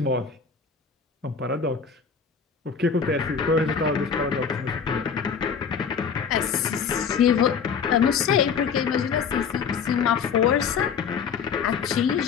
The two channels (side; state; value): right; quieter; 6.3 dB